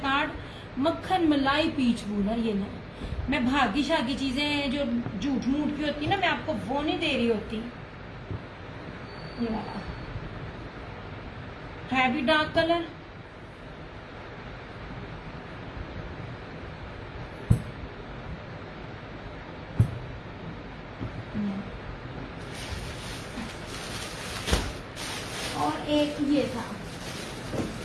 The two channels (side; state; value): both; identical; correlation 1.00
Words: मक्खन मलाई पीच वूल है। ये नहीं, मैं भागी शागी चीजें जो झूठ मूठ की होती है ना, मैं आपको वो नहीं दे रही होती। ये वाला है भी डार्क कलर, और एक ये था।